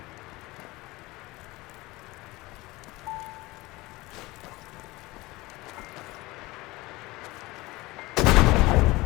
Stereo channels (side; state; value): right; quieter; 21.0 dB